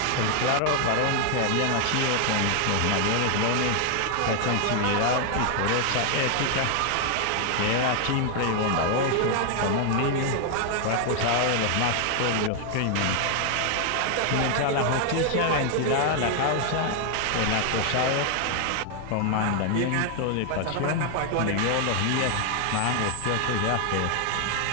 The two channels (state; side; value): different; both; correlation 0.00